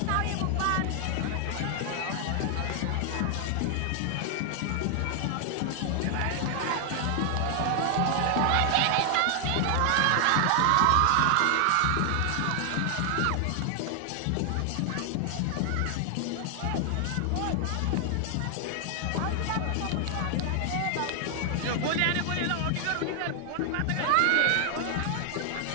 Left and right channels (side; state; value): both; different; correlation 0.00